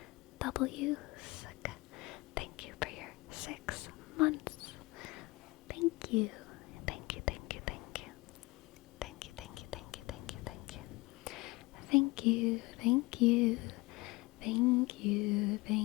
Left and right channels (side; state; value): right; quieter; 22.9 dB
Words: W. Thank you for your 6 months. Thank you. Thank you. Thank you. Thank you. Thank you. Thank you. Thank you. Thank you. Thank you. Thank you. Thank you. Thank you.